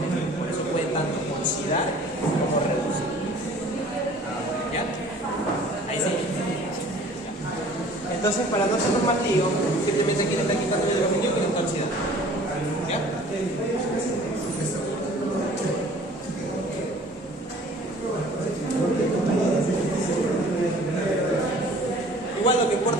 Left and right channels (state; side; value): normal; both; correlation 0.50